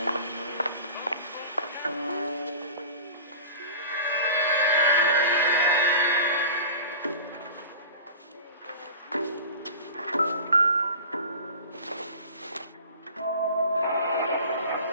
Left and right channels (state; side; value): inverted; both; correlation -0.38